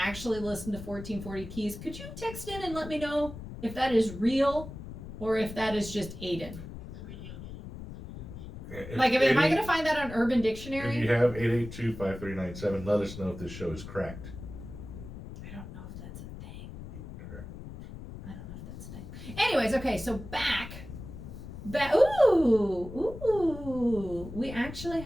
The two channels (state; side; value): noise; left; rumble, 12 dB below the sound